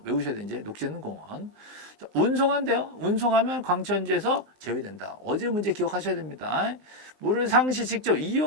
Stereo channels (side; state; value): left; late; 19 ms